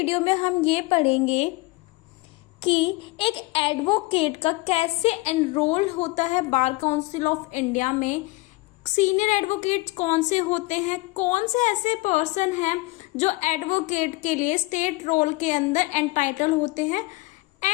में हम ये पढ़ेंगे कि एक एडवोकेट का कैसे एनरोल होता है बार काउंसिल ऑफ इंडिया में, सीनियर एडवोकेट कौन से होते हैं, कौन से ऐसे पर्सन हैं जो एडवोकेट के लिए स्टेट रोल के अंदर एंटाइटल होते हैं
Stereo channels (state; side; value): quieter; right; 22.3 dB